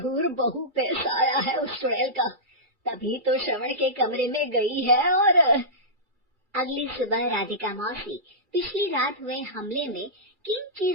बहू पैसा आया है उस चुड़ैल का, तभी तो श्रवण के कमरे में गई है। और अगली सुबह राधिका मौसी पिछली रात हुए हमले में किन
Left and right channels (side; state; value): left; late; 2.3 ms